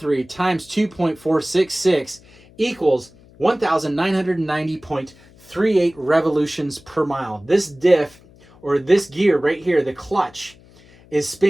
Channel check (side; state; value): left; noise; hum, 26 dB below the sound